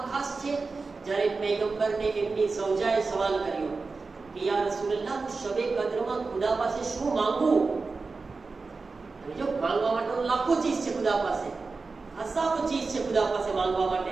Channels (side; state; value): left; quieter; 4.1 dB